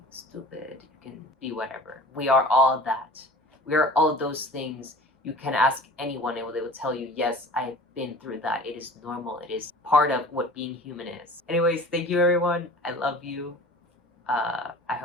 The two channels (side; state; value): both; normal; correlation 0.42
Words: stupid, you can be whatever. We are all that. We are all those things. You can ask anyone and they will tell you, yes, I've been through that. It is normal. It is part of what being human is. Anyways, thank you everyone. I love you. I